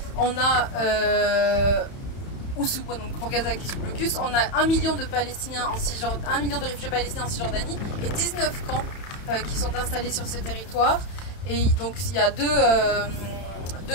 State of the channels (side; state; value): right; late; 31 ms